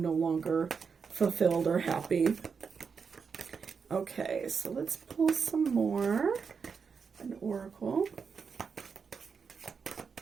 no longer fulfilled or happy. Okay, so let's pull some more. An oracle.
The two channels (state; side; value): quieter; left; 5.8 dB